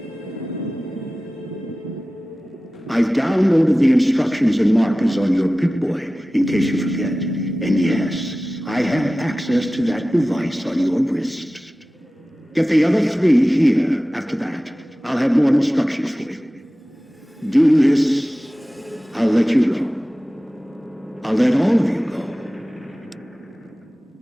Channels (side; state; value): both; normal; correlation 0.96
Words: I've downloaded the instructions and markers on your Pip-Boy, in case you forget. And yes, I have access to that device on your wrist. Get the other 3 here after that. I'll have more instructions for you. Do this, I'll let you go. I'll let all of you go.